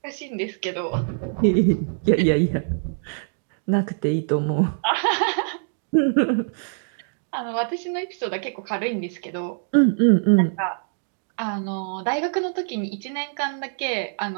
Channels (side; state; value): left; silent; digital silence